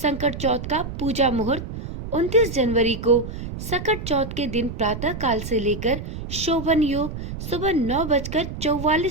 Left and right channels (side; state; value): right; noise; rumble, 8 dB below the sound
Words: चौथ का पूजा मुहूर्त 29 जनवरी को सकट चौथ के दिन प्रातः काल से लेकर शोभन योग सुबह